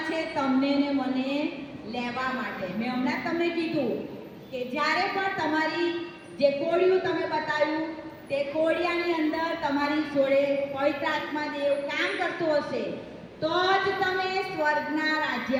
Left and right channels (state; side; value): identical; both; correlation 1.00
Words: છે તમને ને મને લેવા માટે. મેં હમણાં તમને કીધું કે જ્યારે પણ તમારી જે કોળિયું તમે બતાવ્યું તે કોળિયાની અંદર તમારી જોડે પવિત્ર આત્મા દેવ કામ કરતો હશે તો જ તમે સ્વર્ગના